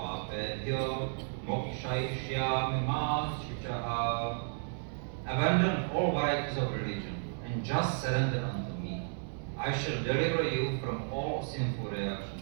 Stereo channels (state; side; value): silent; left; digital silence